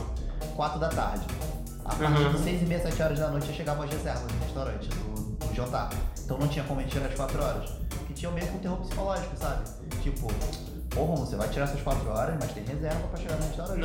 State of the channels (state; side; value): identical; both; correlation 1.00